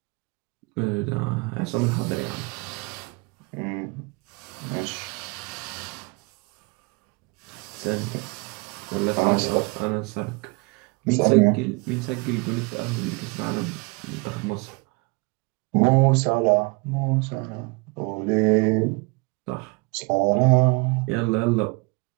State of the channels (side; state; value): left; quieter; 28.7 dB